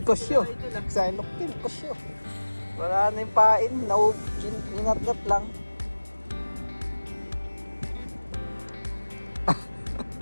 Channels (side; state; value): both; inverted; correlation -1.00